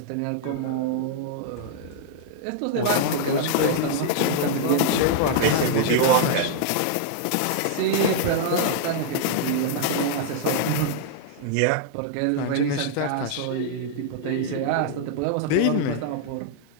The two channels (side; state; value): both; different; correlation -0.01